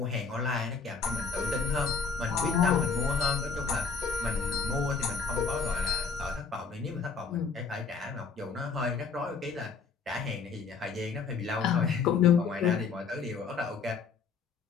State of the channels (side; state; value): right; quieter; 5.4 dB